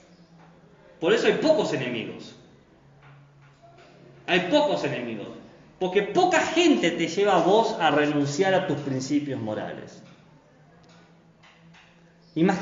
Por eso hay pocos enemigos. Hay pocos enemigos. Porque poca gente te lleva a vos a renunciar a tus principios morales.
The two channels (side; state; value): both; identical; correlation 1.00